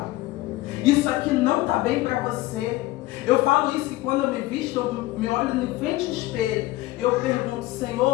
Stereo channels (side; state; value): right; quieter; 17.9 dB